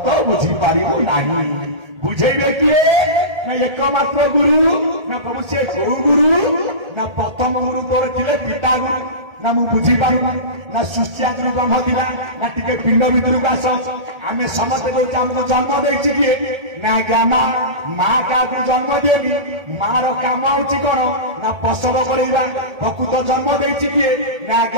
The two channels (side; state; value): left; late; 1.8 ms